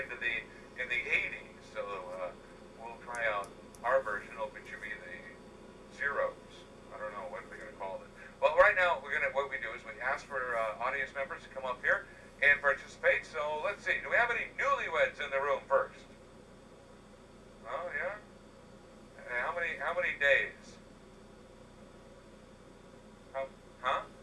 the 80s. So we'll try out our version. It'll be the Zeros. I don't know what we're going to call it. Well, right now, what we do is we ask for audience members to come up here and participate. So let's see. Do we have any newlyweds in the room first? Oh yeah. And how many days? Huh?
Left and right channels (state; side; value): identical; both; correlation 1.00